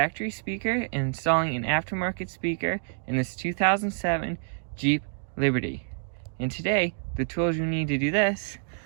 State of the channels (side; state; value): left; silent; 60 dB below the other